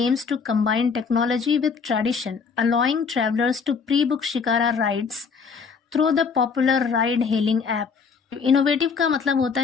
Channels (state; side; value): quieter; right; 5.5 dB